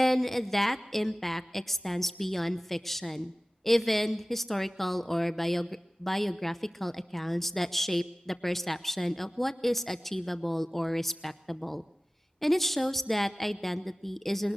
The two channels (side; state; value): both; normal; correlation 0.98